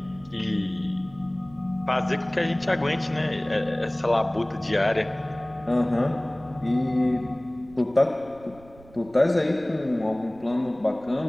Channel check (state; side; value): noise; right; rumble, 23 dB below the sound